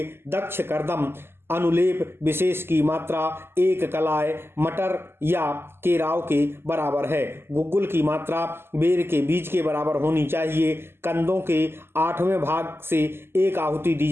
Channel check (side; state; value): left; late; 0.12 ms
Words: दक्ष कर्दम अनुलेप विशेष की मात्रा 1 कलाय मटर या केराव के बराबर है। गुग्गुल की मात्रा बेर के बीज के बराबर होनी चाहिए। कंदों के 8वें भाग से 1 आहुति दी